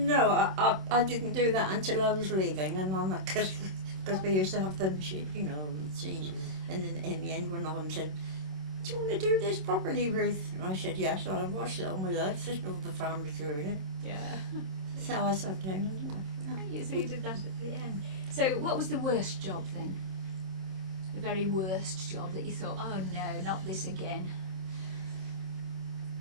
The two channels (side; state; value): left; late; 27 ms